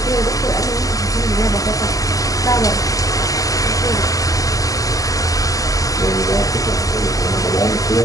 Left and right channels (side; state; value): right; late; 0.17 ms